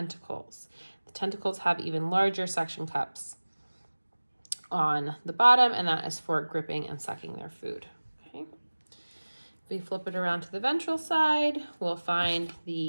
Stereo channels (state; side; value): inverted; both; correlation -1.00